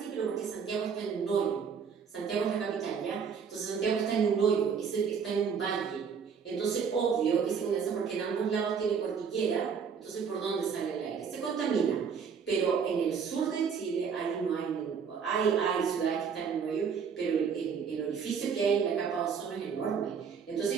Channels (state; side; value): quieter; left; 6.5 dB